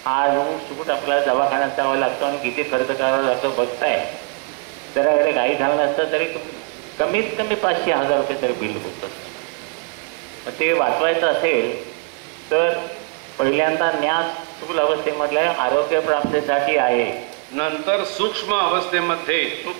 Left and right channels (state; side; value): quieter; left; 35.1 dB